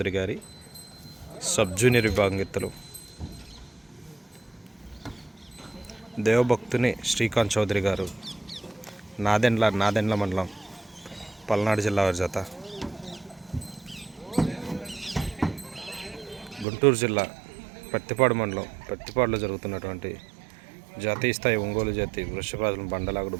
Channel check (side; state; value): left; drops out; at 16.7 s